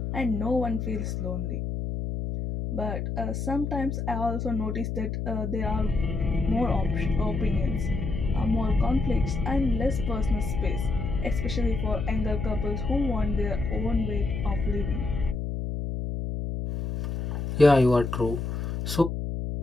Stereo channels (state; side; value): noise; left; hum, 3 dB below the sound